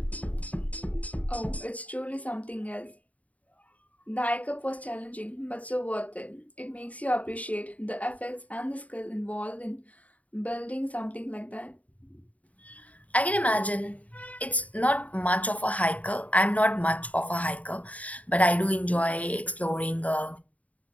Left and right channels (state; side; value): late; right; 0.070 ms